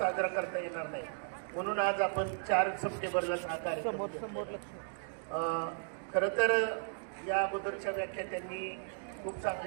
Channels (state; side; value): silent; left; digital silence